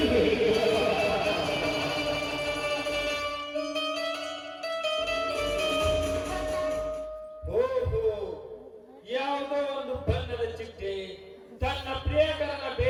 ಯಾವುದೋ ಒಂದು ಬಣ್ಣದ ಚಿಟ್ಟೆ ತನ್ನ ಪ್ರಿಯಕರನ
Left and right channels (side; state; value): both; identical; correlation 1.00